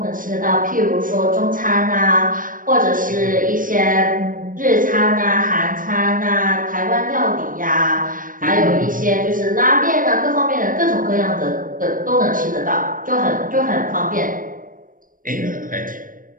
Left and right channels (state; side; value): late; left; 0.40 ms